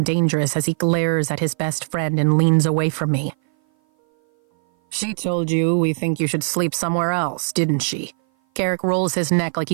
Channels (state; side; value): silent; left; 57 dB below the other